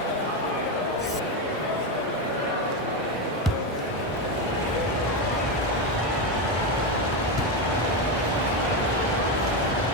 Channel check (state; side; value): normal; both; correlation 0.11